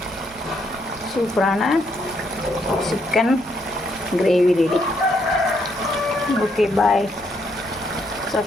சூப்பரான chicken gravy ready. Okay bye.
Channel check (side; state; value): both; normal; correlation 0.74